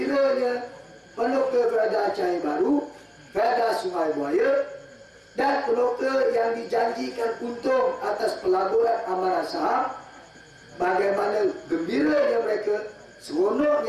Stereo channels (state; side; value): identical; both; correlation 1.00